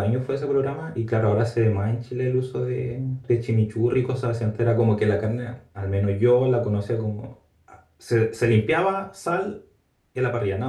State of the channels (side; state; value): both; identical; correlation 1.00